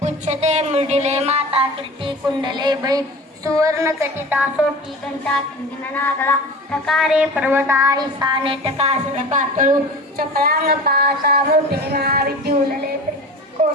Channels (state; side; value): normal; both; correlation 0.35